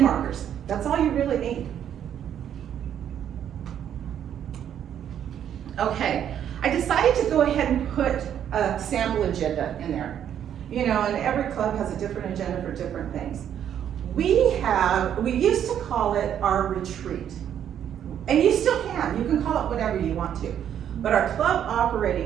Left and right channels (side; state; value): left; quieter; 9.6 dB